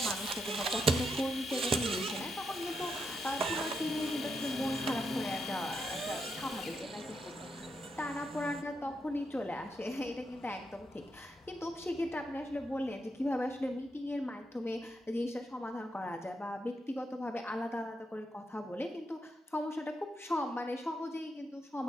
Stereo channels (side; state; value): both; normal; correlation 0.82